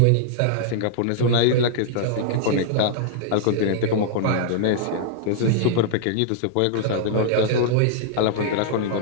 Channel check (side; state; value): both; different; correlation -0.01